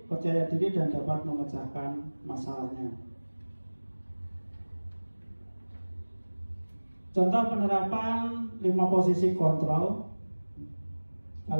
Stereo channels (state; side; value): inverted; both; correlation -1.00